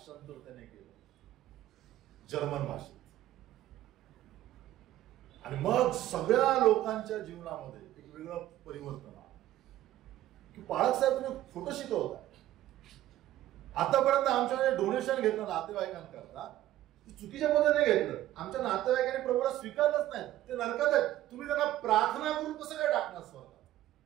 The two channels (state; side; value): quieter; left; 14.0 dB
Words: त्याने केलं जर्मन भाषेत. आणि मग सगळ्या लोकांच्या जीवनामध्ये एक वेगळं परिवर्तन आलं की पाळक साहेब तुम्ही खोटं शिकवता. आतापर्यंत आमच्याकडे डोनेशन घेतलं नातेवाईकांकरता, चुकीच्या पद्धतीने घेतलं. आमच्या नातेवाईकांनी प्रभूला स्वीकारलंच नाही, ते नरकात आहेत. तुम्ही त्यांना प्रार्थना करून कसं काय टाकणार स्वतः?